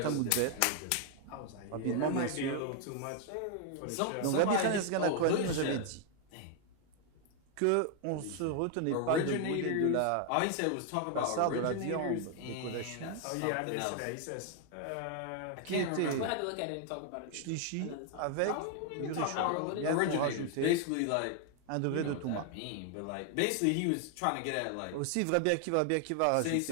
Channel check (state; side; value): different; both; correlation 0.00